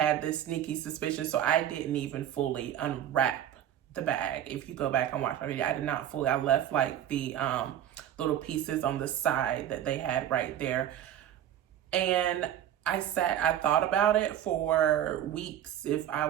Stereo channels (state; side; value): quieter; left; 11.0 dB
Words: this sneaky suspicion, so I didn't even fully unwrap the bag. If you go back and watch my video, I did not fully. I left like the little pieces on the side that they had right there. And I thought about it for weeks if I